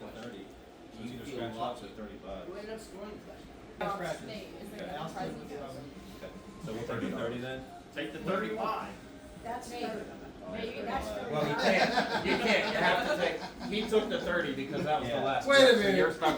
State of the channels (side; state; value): both; identical; correlation 1.00